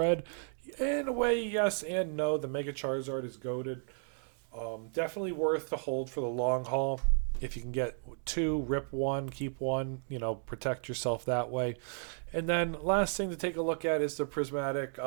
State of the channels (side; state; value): left; silent; 55 dB below the other